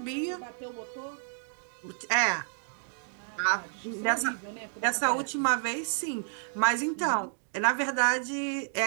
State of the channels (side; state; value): left; silent; digital silence